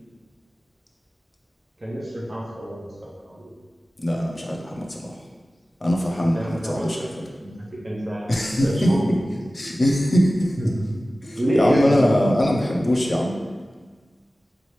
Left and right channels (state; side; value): normal; both; correlation 0.96